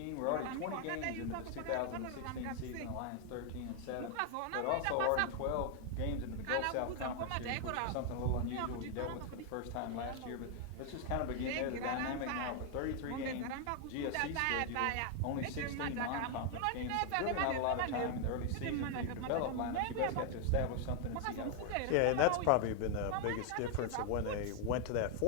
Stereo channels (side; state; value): both; different; correlation 0.00